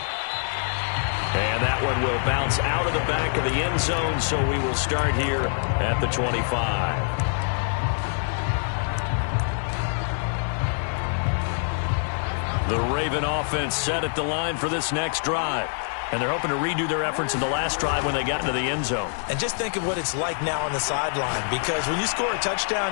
And that one will bounce out of the back of the end zone, so we will start here at the 25. The Raven offense set at the line for this next drive. And they're hoping to redo their efforts in the last drive when they got into the end zone. And just think of what it's like now on the sideline, because when you score a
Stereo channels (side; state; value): right; silent; 62 dB below the other